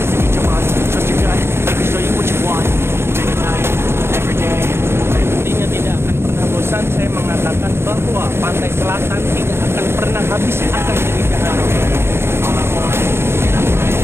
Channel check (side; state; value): left; late; 0.12 ms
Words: in each of us. Trust your gut, it can show you what you want. Day to night, every day. Intinya tidak akan pernah bosan saya mengatakan bahwa pantai selatan tidak akan pernah habis akan keindahan. All I want, and I pray,